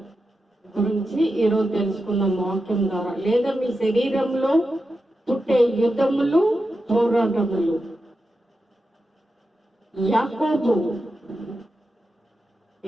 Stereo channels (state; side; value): normal; both; correlation 0.89